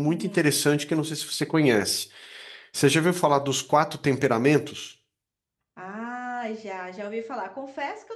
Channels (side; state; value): both; identical; correlation 1.00